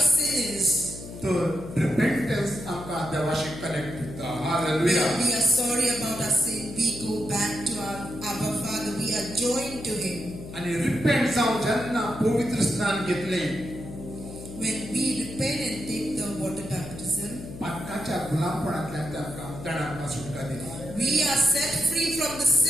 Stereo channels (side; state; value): left; noise; hum, 12 dB below the sound